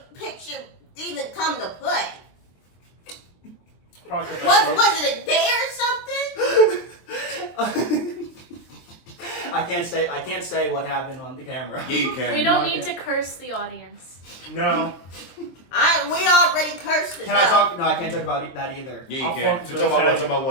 picture even come to play? Probably 'cause I Was it a day or something? I can't say what happened on the camera. Yeah, you can. We don't Okay. need to curse the audience. No. We already cursed it. Can I talk? No, I can't talk about that either. Yeah, you I'll can. fuck To with talk about what? those Talk about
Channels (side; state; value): right; late; 23 ms